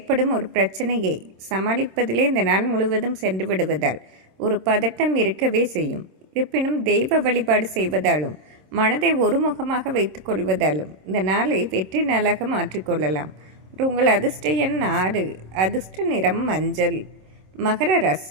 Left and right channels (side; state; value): left; late; 26 ms